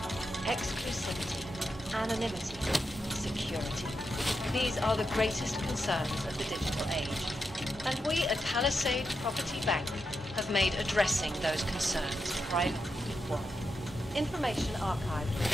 Exclusivity, anonymity, security. These are the greatest concerns of the digital age. And we at Palisade Property Bank have made addressing those concerns privately equal. Information archived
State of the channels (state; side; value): normal; both; correlation 0.86